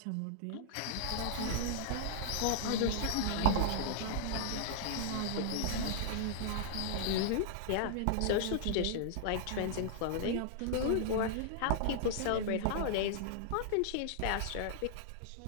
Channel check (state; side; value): different; both; correlation -0.01